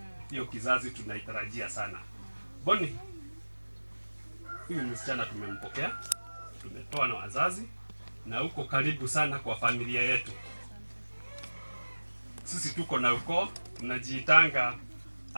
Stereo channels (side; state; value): both; inverted; correlation -1.00